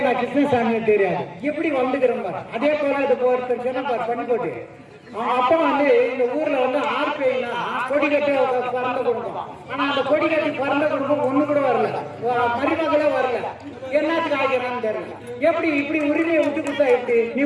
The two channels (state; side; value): identical; both; correlation 1.00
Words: கிருஷ்ணசாமியை தெரியாது. எப்படி வந்துக்கிறோம் பாரு. அதே போல இது ஒருத்தர் சொன்ன பண்ணி போட்டு அவங்க அப்பா வந்து இந்த ஊர்ல வந்து ஆர்பிஐனா கொடி கட்டி பறந்த குடும்பம். ஆனா அந்த கொடி கட்டி பறந்த குடும்பம் ஒண்ணு கூட வரல, மருமகளே வரல. என்னத்துக்கு ஆகிறான்னு தெரியல. எப்படி இப்படி உரிமையை விட்டு கொடுத்தா எப்படி? நீ